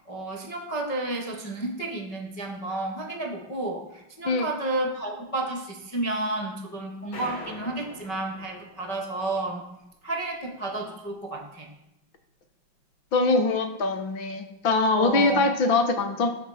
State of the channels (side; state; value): right; late; 5.3 ms